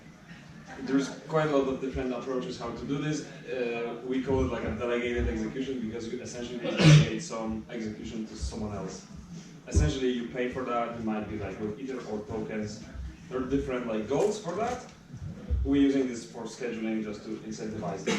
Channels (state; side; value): identical; both; correlation 1.00